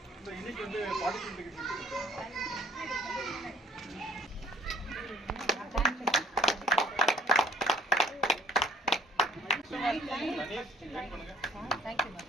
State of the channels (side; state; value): both; normal; correlation 0.57